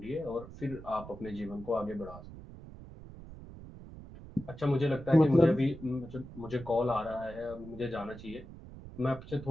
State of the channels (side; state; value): right; noise; rumble, 15 dB below the sound